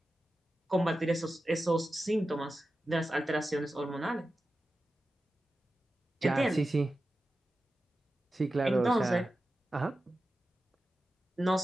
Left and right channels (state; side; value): normal; both; correlation 0.93